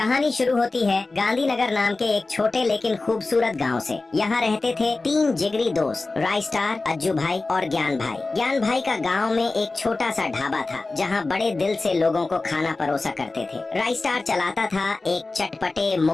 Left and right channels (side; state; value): right; quieter; 3.4 dB